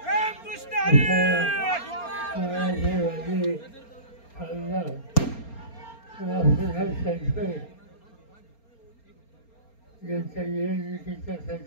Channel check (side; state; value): right; late; 4.3 ms